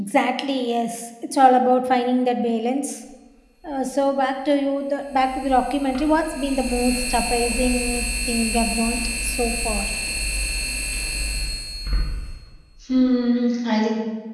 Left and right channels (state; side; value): identical; both; correlation 1.00